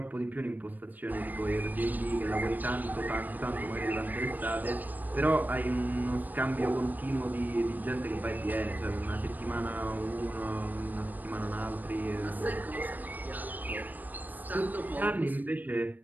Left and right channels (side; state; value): left; late; 0.085 ms